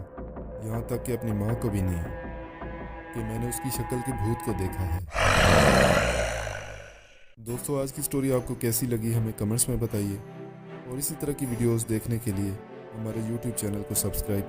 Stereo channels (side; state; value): both; identical; correlation 1.00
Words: यहाँ तक कि अपनी माँ को भी नहीं, कि मैंने उसकी शक्ल के भूत को देखा है। दोस्तों, आज की स्टोरी आपको कैसी लगी हमें कमेंट्स में बताइए और इसी तरह की वीडियोस देखने के लिए हमारे YouTube चैनल को